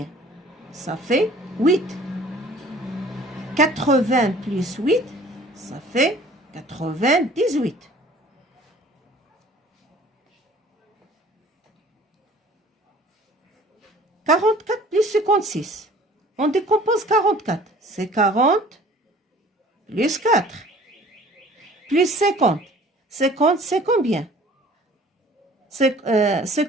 Ça fait 8. 80 plus 8, ça fait 98. « 44 plus 56. On décompose 44. C'est 40 plus 4. Plus 50. 50, c'est combien?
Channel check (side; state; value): both; normal; correlation 0.50